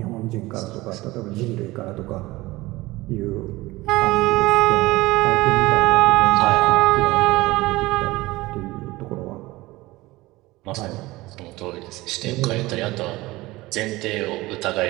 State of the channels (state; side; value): quieter; left; 19.8 dB